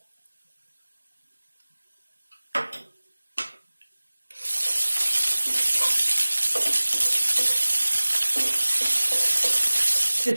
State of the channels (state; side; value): inverted; both; correlation -1.00